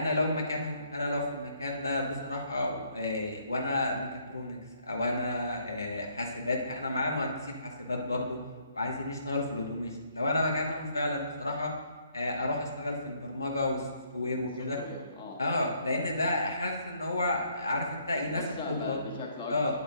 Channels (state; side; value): inverted; both; correlation -0.68